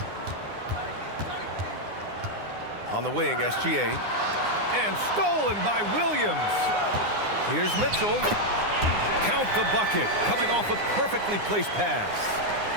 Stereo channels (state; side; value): late; left; 9.8 ms